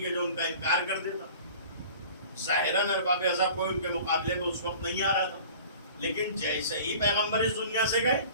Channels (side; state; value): both; inverted; correlation -0.44